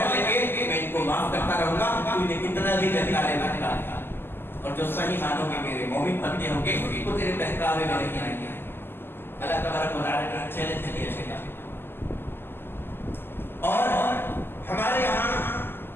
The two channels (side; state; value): right; late; 0.10 ms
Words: لیں گے میں ان کو معاف کرتا رہوں گا. انہیں کتنا بھی بہکالے گا, اور جو صحیح معنوں میں میرے مومن بندے ہوں گے وہ تیرے بہکاوے میں نہیں آئیں گے. اللہ تبارک و تعالیٰ نے چیلنج دیا شیطان. اور ہمارے یہاں